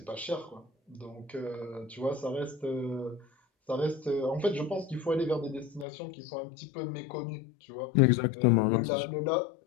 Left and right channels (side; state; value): right; drops out; at 5.9 s